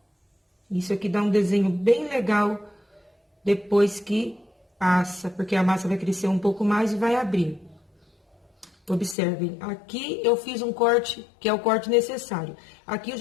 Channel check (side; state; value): right; drops out; at 9.2 s